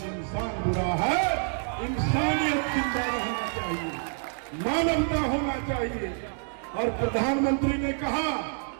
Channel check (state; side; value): silent; left; 55 dB below the other